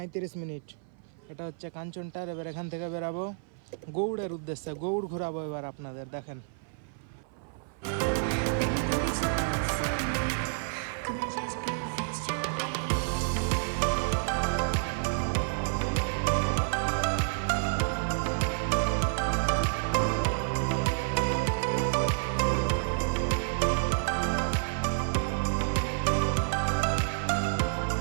এটা হচ্ছে কাঞ্চনটার। এবার এখান থেকে বেরাবো গৌড়ের উদ্দেশ্যে, গৌড় ঘোরাবো এবার আপনাদের, দেখেন।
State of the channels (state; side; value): silent; left; 56 dB below the other